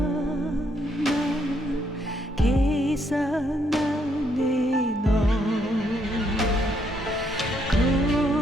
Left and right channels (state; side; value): normal; both; correlation 0.73